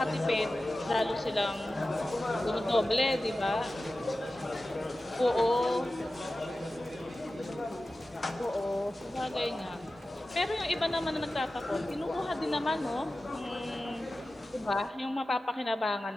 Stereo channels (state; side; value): normal; both; correlation 0.95